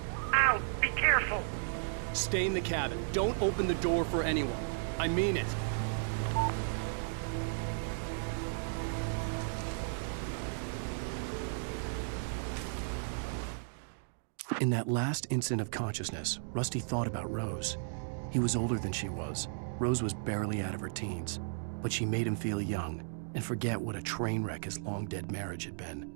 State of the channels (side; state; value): left; silent; digital silence